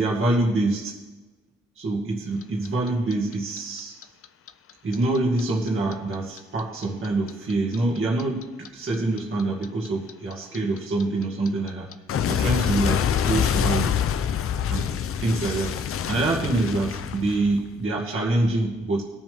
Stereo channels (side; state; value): both; normal; correlation 0.66